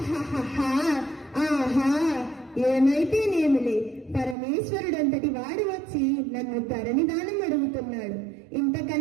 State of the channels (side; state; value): left; drops out; at 4.4 s